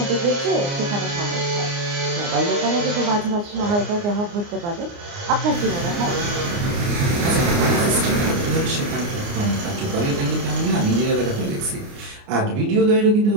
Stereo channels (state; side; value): late; left; 29 ms